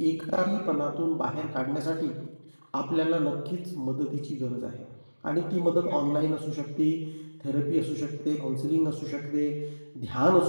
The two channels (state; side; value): inverted; both; correlation -1.00